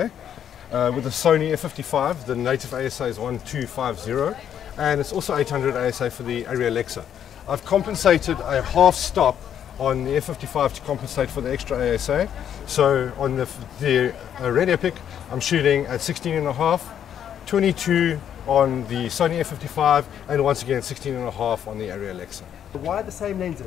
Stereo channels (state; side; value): quieter; right; 9.4 dB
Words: with the Sony F55 the native ASA is 1250 and it's also 800 ASA for the Arri Alexa. I've compensated a half stop on the F55 to compensate for the extra ASA. So on the Red Epic I'm shooting at 16.5, 22 on the Sony F55 and once again 16.5 on the Arri Alexa. Why the same